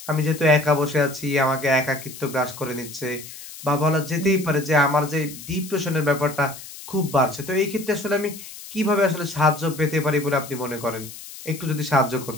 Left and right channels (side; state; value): left; noise; hiss, 14 dB below the sound